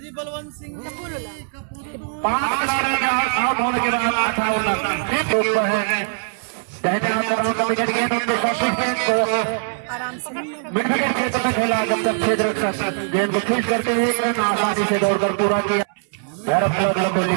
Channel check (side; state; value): left; silent; 65 dB below the other